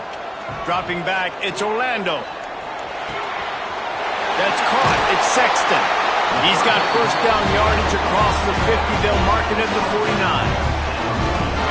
Dropping back, it's Orlando. That's caught, it's Sexton. He's got first down yardage across the 50. They'll mark it at the 49.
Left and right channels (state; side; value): identical; both; correlation 1.00